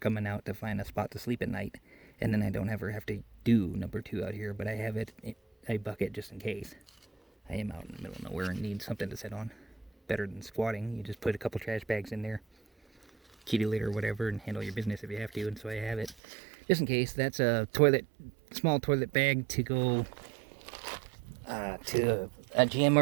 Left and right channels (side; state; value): left; drops out; at 16.2 s